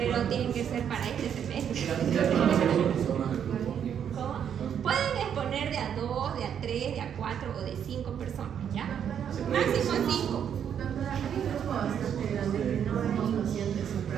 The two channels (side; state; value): left; quieter; 8.6 dB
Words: tienen que ser para este semestre. ¿Cómo? Pueden exponer de a 2, de a 3, de a 4 o de 5 personas, ¿ya? Máximo 5. Hay grupos donde no hay pacientes en